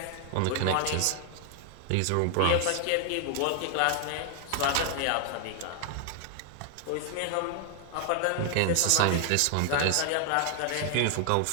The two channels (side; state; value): both; different; correlation 0.00